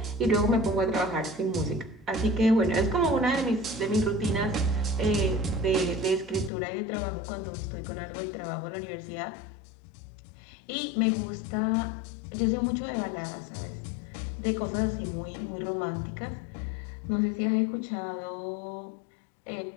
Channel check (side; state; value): right; drops out; at 6.5 s